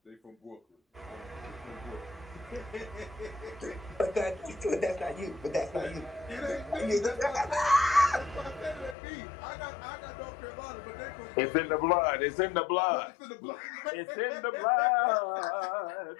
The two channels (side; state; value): right; drops out; at 9.0 s